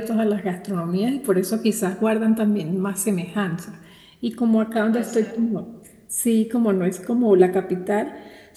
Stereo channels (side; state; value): both; identical; correlation 1.00